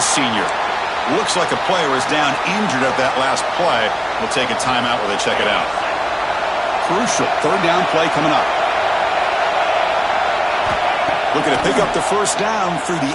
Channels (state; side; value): identical; both; correlation 1.00